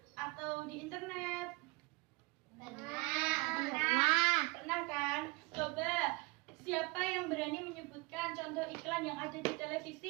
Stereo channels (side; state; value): left; quieter; 25.9 dB